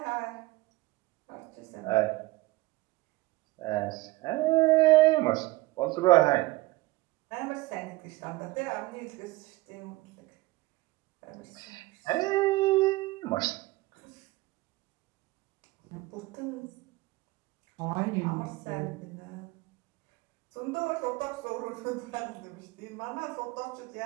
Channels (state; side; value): quieter; left; 20.1 dB